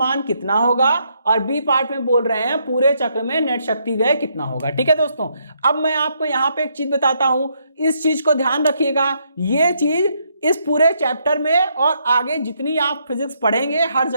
कितना होगा, और बी पार्ट में बोल रहे हैं पूरे चक्र में नेट शक्ति व्यय कितना होगा, ठीक है दोस्तों। अब मैं आपको यहाँ पे एक चीज बताता हूं, इस चीज को ध्यान रखिएगा, ये चीज इस पूरे चैप्टर में और आगे जितनी आप फिजिक्स पढ़ेंगे हर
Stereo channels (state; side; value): inverted; both; correlation -0.75